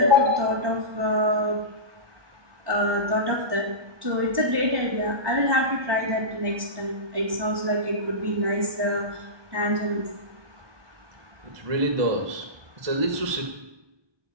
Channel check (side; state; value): left; late; 1.2 ms